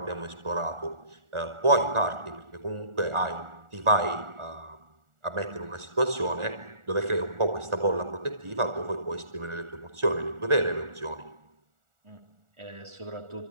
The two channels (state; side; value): late; left; 1.4 ms